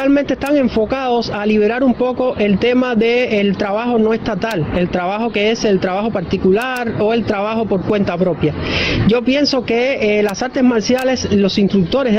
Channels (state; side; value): identical; both; correlation 1.00